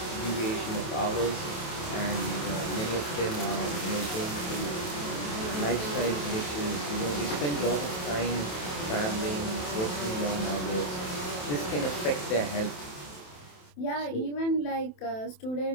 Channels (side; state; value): right; late; 27 ms